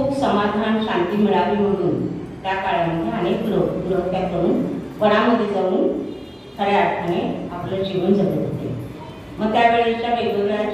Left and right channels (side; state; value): both; identical; correlation 1.00